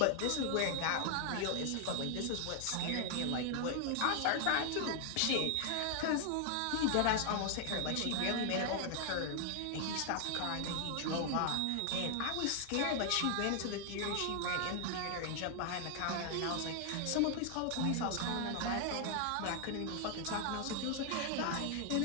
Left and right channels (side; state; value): both; different; correlation 0.00